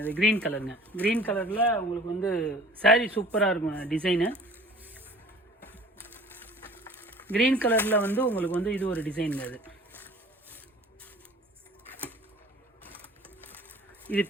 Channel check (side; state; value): both; normal; correlation 0.47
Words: இது க்ரீன் கலருங்க. க்ரீன் கலரில் உங்களுக்கு வந்து சாரீ சூப்பராக இருக்கும். டிசைனு க்ரீன் கலரில் வந்து உங்களுக்கு வந்து இது ஒரு டிசைனுங்க. இது